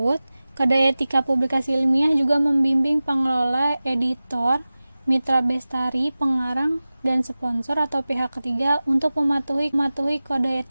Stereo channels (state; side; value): inverted; both; correlation -0.97